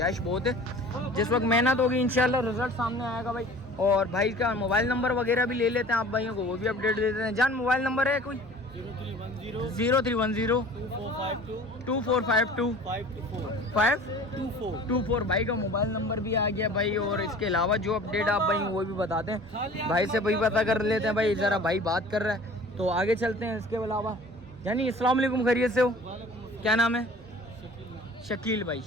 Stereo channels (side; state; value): both; normal; correlation 0.45